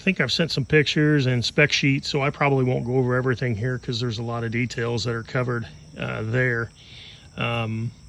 I've sent some pictures and spec sheets, so I probably won't go over everything here because there's a lot of details that are covered there. Pardon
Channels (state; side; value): identical; both; correlation 1.00